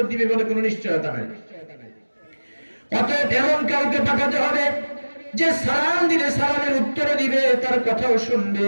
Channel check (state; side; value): inverted; both; correlation -1.00